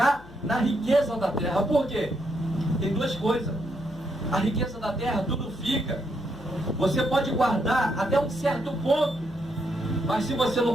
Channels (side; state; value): left; noise; hum, 20 dB below the sound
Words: na riqueza da terra. Por quê? Tem duas coisas. A riqueza da terra, tudo fica. Você pode guardar até um certo ponto. Mas se você